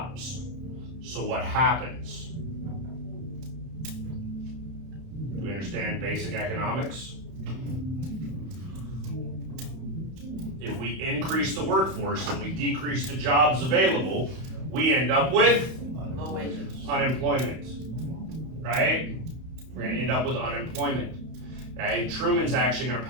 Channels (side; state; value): left; late; 31 ms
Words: So what happens? Do we understand basic economics? If we increase the workforce and we decrease the jobs available, we end up with Low wages. unemployment, right? We're going to end up with unemployment. Okay? Truman's actually going to